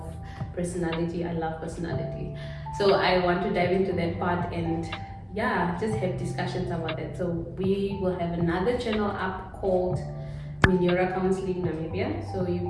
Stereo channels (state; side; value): identical; both; correlation 1.00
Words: personality. I love personality. So I want to dive into that part and just have discussions about it. So we will have another channel up called Minyora Counseling Namibia, so you